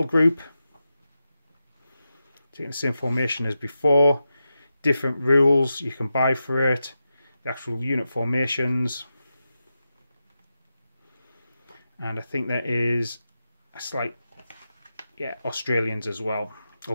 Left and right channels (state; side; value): inverted; both; correlation -0.90